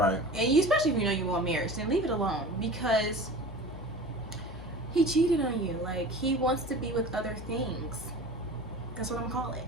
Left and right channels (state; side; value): normal; both; correlation 0.37